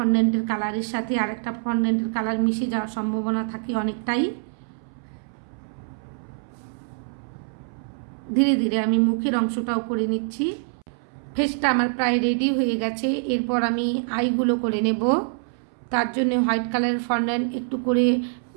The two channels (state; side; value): silent; left; 62 dB below the other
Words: কালারের সাথে আরেকটা ফন্ডেন্টের কালার মিশে যাওয়ার সম্ভাবনা থাকে অনেকটাই। ধীরে ধীরে আমি মুখের অংশটাও করে নিচ্ছি। ফেসটা আমার প্রায় রেডি হয়ে গেছে। এরপর আমি আইগুলো করে নেব। তার জন্য হোয়াইট কালারের ফন্ডেন্ট একটু করে